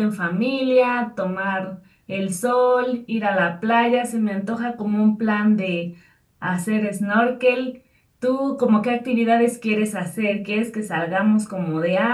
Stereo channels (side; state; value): both; identical; correlation 1.00